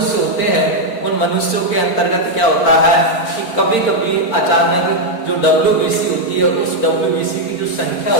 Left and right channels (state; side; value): late; right; 4.4 ms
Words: होते हैं, उन मनुष्यों के अंतर्गत क्या होता है कि कभी कभी अचानक जो WBC होती है, उस WBC की जो संख्या